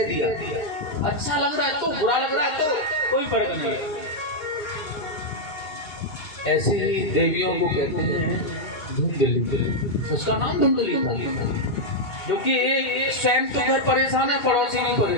दिया, अच्छा लग रहा है तो, बुरा लग रहा है तो, कोई फर्क नहीं है। ऐसे ही देवियों को कहते हैं धुंधली। उसका नाम धुंधली था, क्योंकि स्वयं तो घर परेशान है, पड़ोसी भी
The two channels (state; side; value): late; right; 2.1 ms